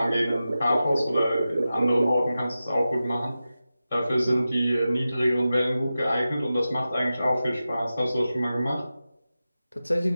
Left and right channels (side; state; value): both; inverted; correlation -0.93